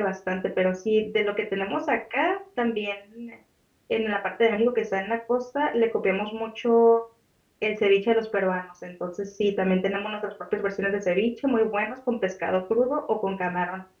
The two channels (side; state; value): both; identical; correlation 1.00